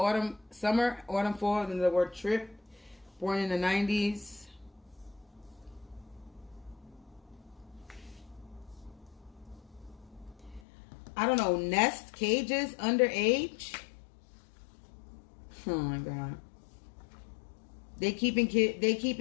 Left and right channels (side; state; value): right; drops out; at 10.6 s